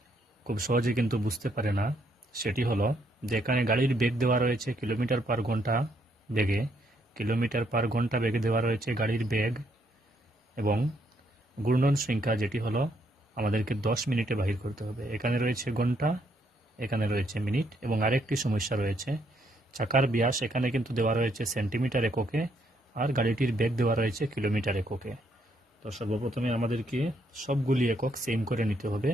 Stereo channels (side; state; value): both; normal; correlation 0.73